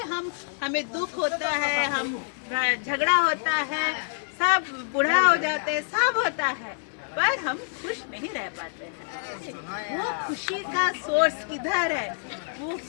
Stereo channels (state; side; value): silent; right; 59 dB below the other